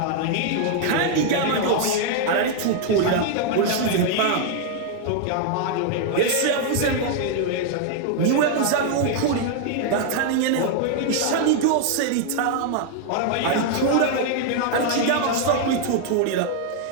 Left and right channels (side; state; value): both; different; correlation 0.00